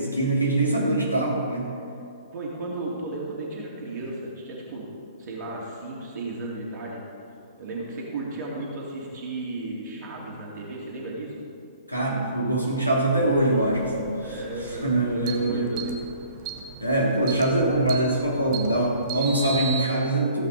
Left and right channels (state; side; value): inverted; both; correlation -0.55